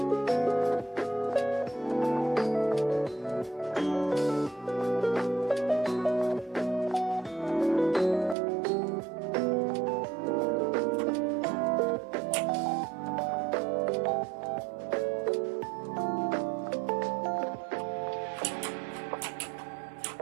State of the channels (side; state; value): left; drops out; at 8.3 s